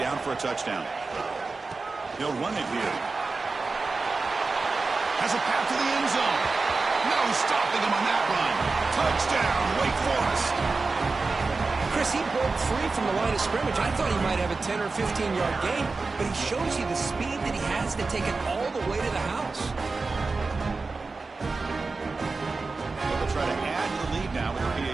for a touchdown. They'll run it here. Has a path to the end zone. No stopping him on that run. Touchdown, Wake Forest. Chris, he broke free from the line of scrimmage. I thought he might have a 10 or 15-yard gain, but he shows you the speed that he has to take it all the way to the house. They'll try to add to the lead now with their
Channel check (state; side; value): quieter; left; 3.9 dB